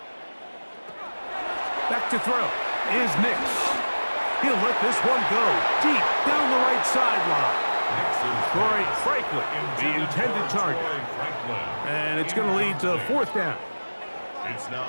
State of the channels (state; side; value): inverted; both; correlation -1.00